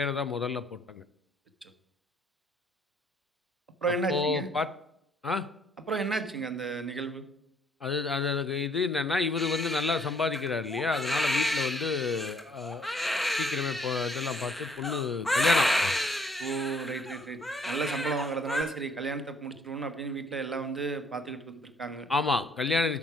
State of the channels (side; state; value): both; normal; correlation 0.63